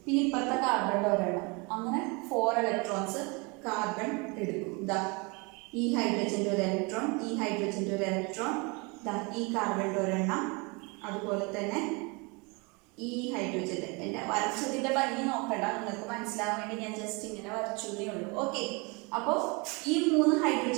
പിന്നെ ഇപ്പുറത്തെ കാർബണിന്റെ ഒരെണ്ണം, അങ്ങനെ 4 ഇലക്ട്രോൺസ് കാർബൺ എടുക്കും. ഇതാ ഈ ഹൈഡ്രജന്റെ ഒരു ഇലക്ട്രോൺ, ഈ ഹൈഡ്രജന്റെ ഒരു ഇലക്ട്രോൺ, ഇതാ ഈ കാർബണിന്റെ ഒരെണ്ണം, അതുപോലെ തന്നെ ഈ ഹൈഡ്രജന്റെ. എന്റെ വരച്ചതിന്റെ ഭംഗി നോക്കണ്ട, നിങ്ങൾക്ക് മനസ്സിലാവാൻ വേണ്ടി ഞാൻ ജസ്റ്റ് ഇങ്ങനെ വരച്ചേ ഉള്ളൂ. ഓക്കെ, അപ്പോൾ ഈ 3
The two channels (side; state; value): left; quieter; 29.3 dB